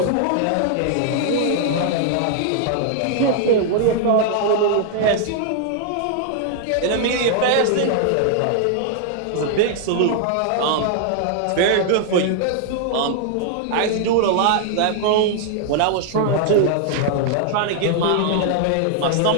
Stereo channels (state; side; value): different; both; correlation -0.01